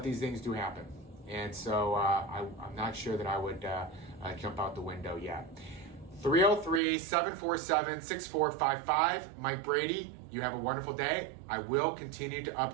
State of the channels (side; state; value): left; drops out; at 6.8 s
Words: these things do happen. And so I'm not sure that I would jump out the window yet. 303-747-6455. Mike Brady, you have a wonderful day. I will continue to